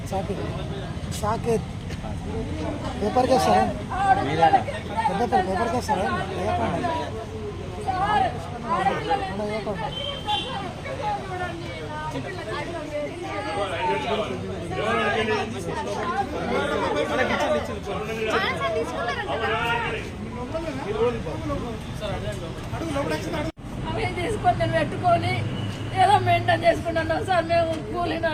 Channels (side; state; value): both; identical; correlation 1.00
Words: Saketh Saketh paper కేసారా పేపర్ కేసారా సార్ అవి తీసుకొని నేను పెట్టుకొని ఏదో మెయింటైన్ చేసుకుంటున్నాం సార్. మేము